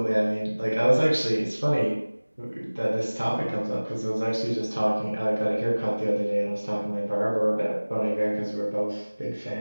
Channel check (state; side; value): inverted; both; correlation -1.00